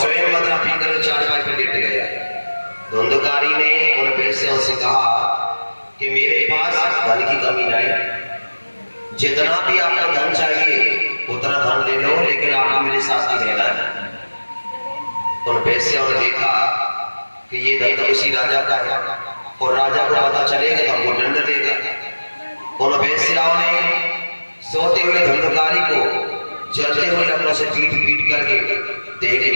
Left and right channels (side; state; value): both; inverted; correlation -1.00